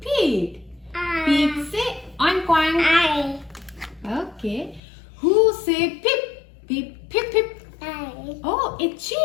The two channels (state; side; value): drops out; right; at 4.8 s